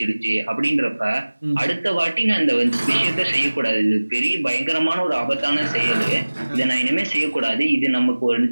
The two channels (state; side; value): inverted; both; correlation -1.00